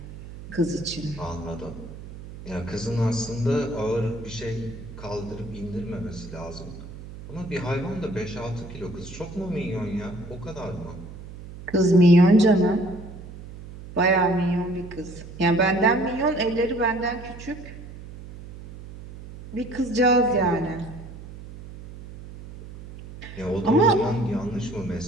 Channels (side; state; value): right; noise; hum, 14 dB below the sound